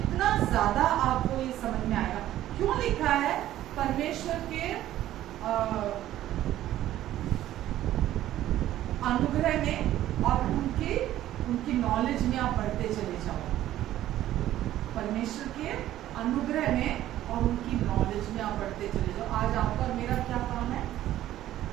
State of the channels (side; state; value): left; quieter; 13.4 dB